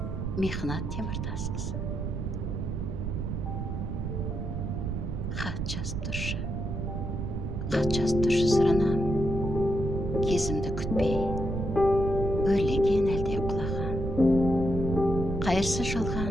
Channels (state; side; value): noise; right; rumble, 3 dB below the sound